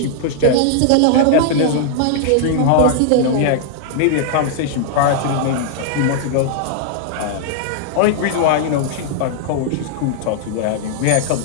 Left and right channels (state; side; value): different; both; correlation -0.01